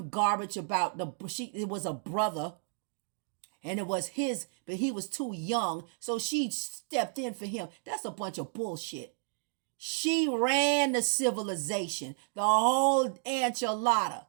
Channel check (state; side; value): silent; left; 56 dB below the other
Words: garbage about it was a brother and it was his, but he was too young, so she stepped in for him. That's a bunch of bullshit. She ran the civilization, the whole enchilada.